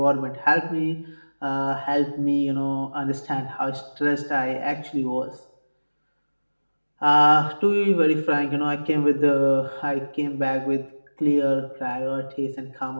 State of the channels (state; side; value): inverted; both; correlation -1.00